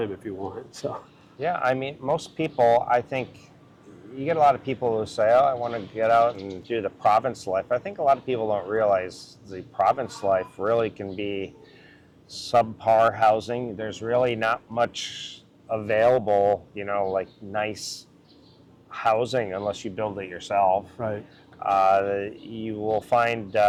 if you want. So. Yeah, I mean, most people, I think, you get a lot of people who say, oh, I want to get out and do the province life. I think a lot of people don't realize the province life really can be subpar housing. There's really not much available, you know, like nice housing unless you build it yourself. Right. You will find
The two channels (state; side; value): identical; both; correlation 1.00